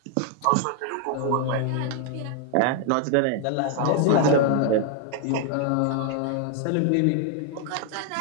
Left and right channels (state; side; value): different; both; correlation 0.00